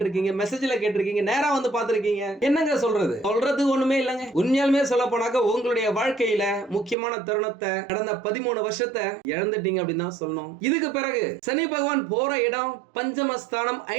மெசேஜ்ல கேட்டிருக்கீங்க, நேரா வந்து பாத்திருக்கீங்க. என்னங்க சொல்றது ஒண்ணுமே இல்லங்க. உண்மையாலுமே சொல்ல போனாக்க உங்களுடைய வாழ்க்கையில முக்கியமான தருணத்தை கடந்த 13 வருஷத்தை இழந்துட்டீங்க அப்படின்னு தான் சொல்லணும். இதுக்கு பிறகு சனி பகவான் போற இடம் பஞ்சமஸ்தானம்,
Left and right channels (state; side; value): drops out; left; at 7.0 s